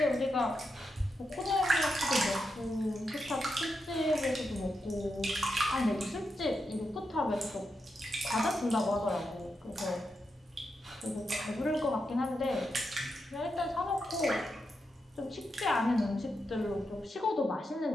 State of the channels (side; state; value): both; normal; correlation 0.86